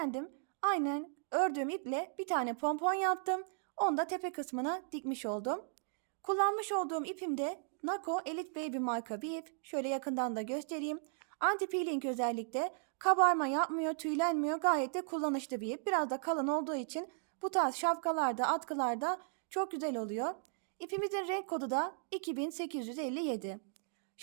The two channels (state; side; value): silent; left; digital silence